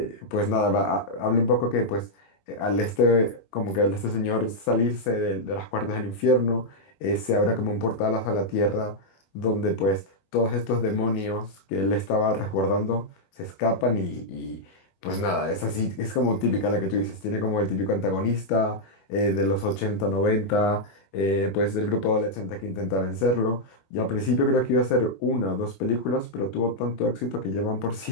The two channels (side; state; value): right; late; 21 ms